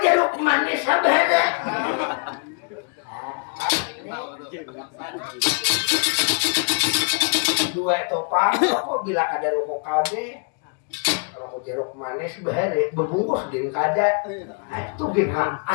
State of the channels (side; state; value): right; quieter; 38.9 dB